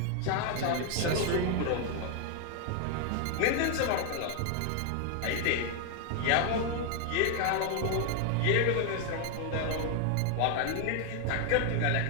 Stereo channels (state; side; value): different; both; correlation 0.00